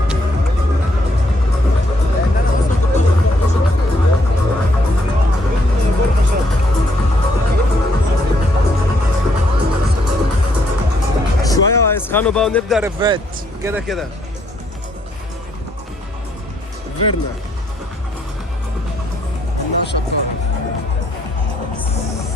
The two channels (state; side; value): normal; both; correlation 0.71